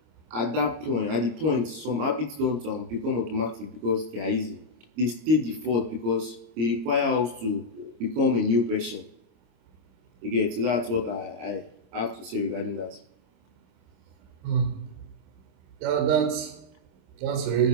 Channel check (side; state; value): left; late; 25 ms